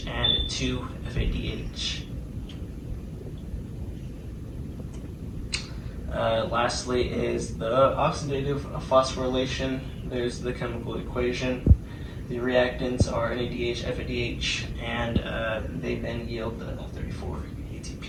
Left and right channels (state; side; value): identical; both; correlation 1.00